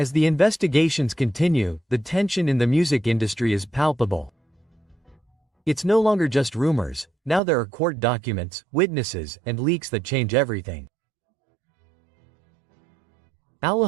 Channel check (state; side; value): drops out; left; at 7.4 s